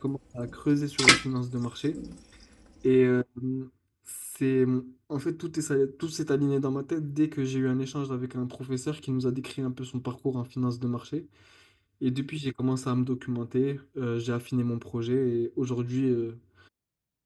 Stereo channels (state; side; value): identical; both; correlation 1.00